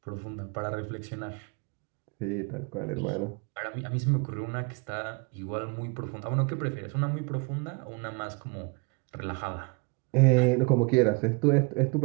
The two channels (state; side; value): quieter; left; 30.4 dB